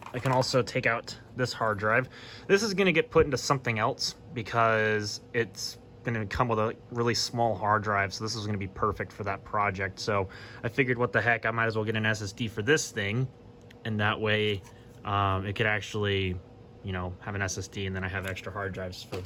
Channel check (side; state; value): both; identical; correlation 1.00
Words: I can also take out this hard drive. This is going to get put into something else, because it's going to come with a really small hard drive, so this is going to be perfect for that project. So I figured, what the heck, I might as well get an SSD for this thing, and that way it could actually, you know, have an SSD, and then I have extra hard drives for